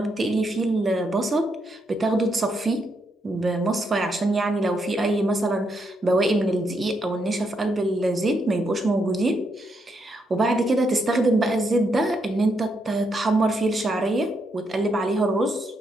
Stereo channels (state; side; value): normal; both; correlation 0.79